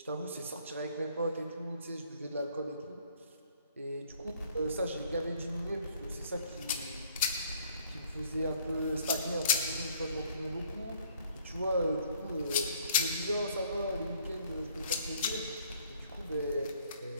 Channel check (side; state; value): both; inverted; correlation -0.61